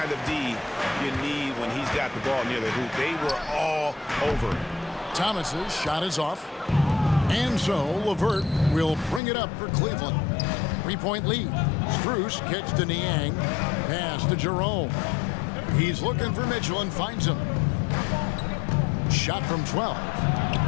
of D you need when he's got the ball near the hoop. They were all over it. Thomas's shot is off. And so LeVert will bring it up for Cleveland. 3-point lead. Strus kicks to Niang. Pass to Jerome. He's looking for Mitchell and finds him. Shot from 12.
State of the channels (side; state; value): right; drops out; at 9.2 s